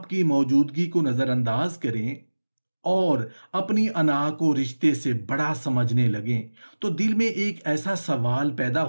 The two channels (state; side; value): inverted; both; correlation -1.00